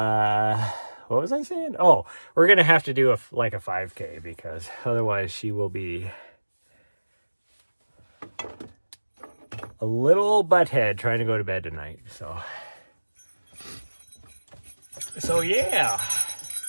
was I saying? Oh, we're going to have to do a 5K because otherwise she will be a little butthead trying to go to bed tonight. So yeah.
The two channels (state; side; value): inverted; both; correlation -1.00